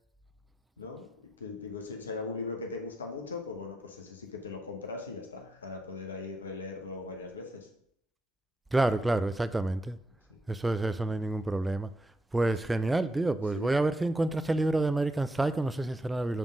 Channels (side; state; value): both; normal; correlation 0.83